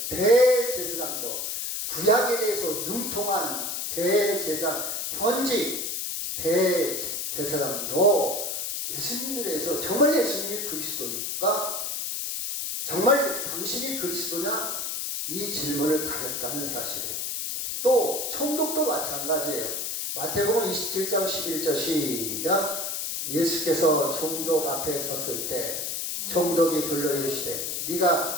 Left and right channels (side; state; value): left; noise; hiss, 3 dB below the sound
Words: 대제사장도, 구약에 대해서 능통한 대제사장, 현직 대제사장도 예수님에 대해서 정말 예수님이 그리스도입니까? 정말 당신이 그리스도냐? 이 질문을 가졌다는 사실이에요. 또, 총독도 마찬가지예요. 마태복음 27장 11절 시작. 예수께서 총독 앞에 섰을 때 총독이 불러 이르시되